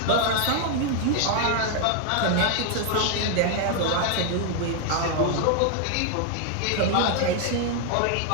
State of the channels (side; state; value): both; different; correlation 0.00